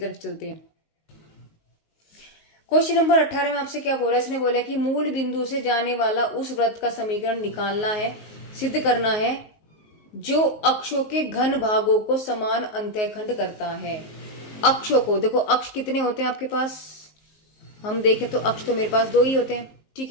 चलते हैं। क्वेश्चन नंबर 18 में आपसे क्या बोला है, इसने बोला कि मूल बिंदु से जाने वाला उस वृत्त का समीकरण निकालना है, सिद्ध करना है जो अक्षों के घन भागों को समान अंतःखंड करता है। अक्षों को देखो, अक्ष कितने होते हैं आपके पास, हम देखें तो अक्ष तो मेरे पास 2 ही होते हैं, ठीक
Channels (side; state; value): right; late; 19 ms